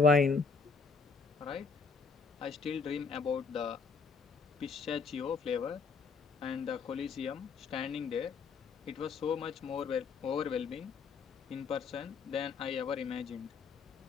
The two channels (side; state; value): right; quieter; 5.0 dB